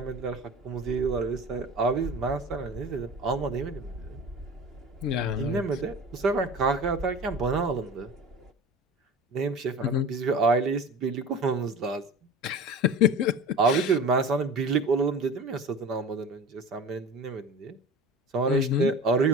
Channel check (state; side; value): normal; both; correlation 0.36